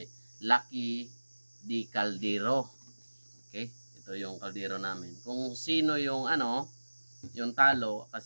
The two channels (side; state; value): both; inverted; correlation -1.00